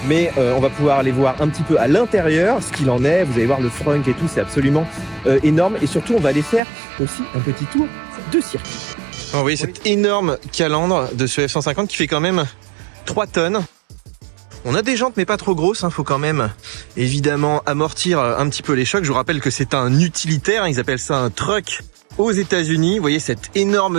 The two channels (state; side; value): drops out; left; at 6.6 s